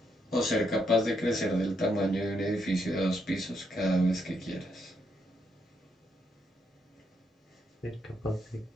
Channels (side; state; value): both; normal; correlation 0.77